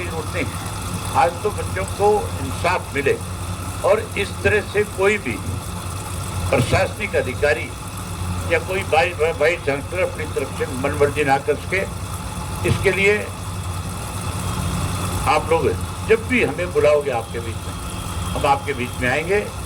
जरूरत नहीं, आज तो बच्चों को इंसाफ मिले और इस तरह से कोई भी प्रशासनिक अधिकारी या कोई वाइस चांसलर अपनी तरफ से मनमर्जी ना कर सके। इसके लिए आप लोग जब भी हमें बुलाओगे आपके बीच में, हम आपके बीच में आएंगे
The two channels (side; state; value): both; identical; correlation 1.00